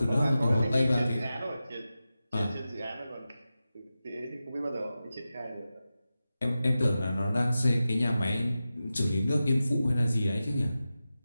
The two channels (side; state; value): both; inverted; correlation -0.93